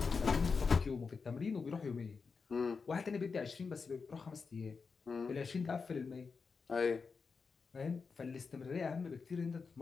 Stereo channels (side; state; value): right; quieter; 5.0 dB